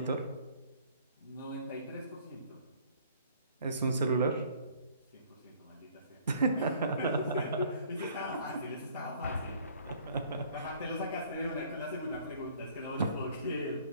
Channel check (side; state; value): both; inverted; correlation -0.56